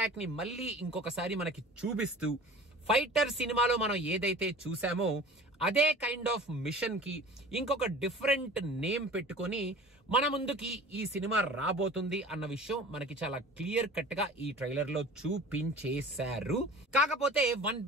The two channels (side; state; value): both; normal; correlation 0.42